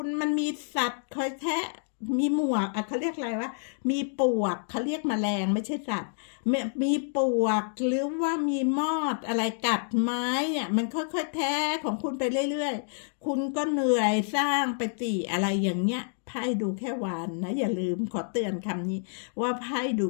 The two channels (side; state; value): right; silent; digital silence